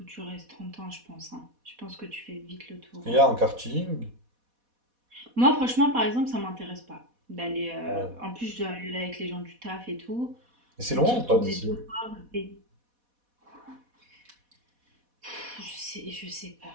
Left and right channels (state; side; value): late; left; 4.1 ms